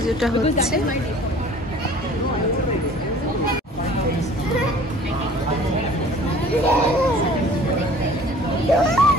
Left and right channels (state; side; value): normal; both; correlation 0.49